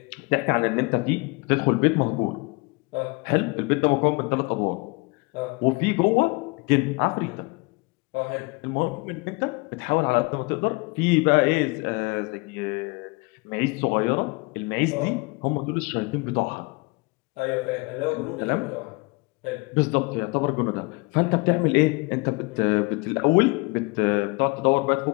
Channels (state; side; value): quieter; right; 27.5 dB